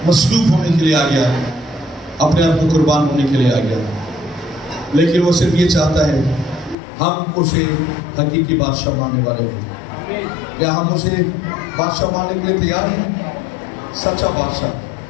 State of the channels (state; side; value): drops out; right; at 6.8 s